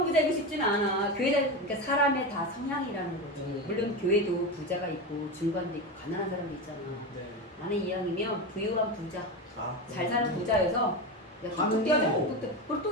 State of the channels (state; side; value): normal; both; correlation 0.19